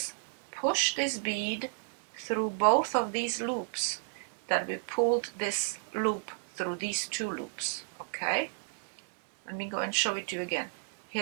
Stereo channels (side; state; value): left; silent; digital silence